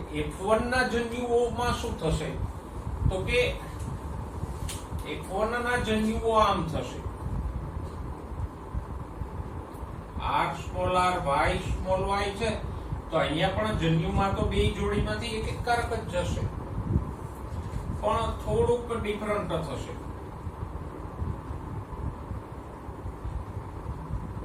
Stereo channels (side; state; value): both; identical; correlation 1.00